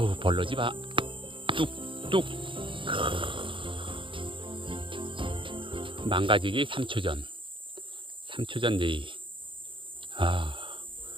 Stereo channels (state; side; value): late; left; 0.25 ms